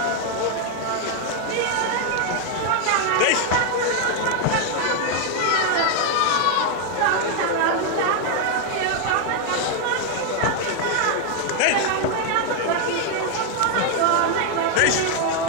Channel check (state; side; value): different; both; correlation 0.00